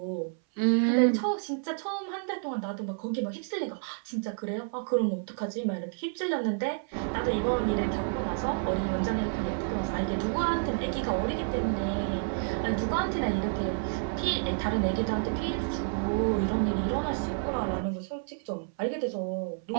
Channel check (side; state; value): left; silent; 58 dB below the other